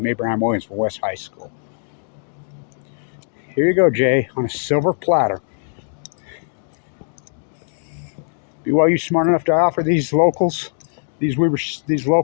Abraham Williams from West High School. Here you go, Jay, on a silver platter. BYU smart enough to offer these locals, these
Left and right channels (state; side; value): silent; right; digital silence